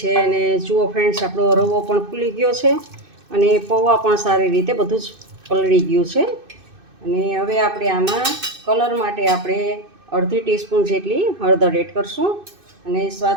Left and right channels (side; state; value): left; late; 2.6 ms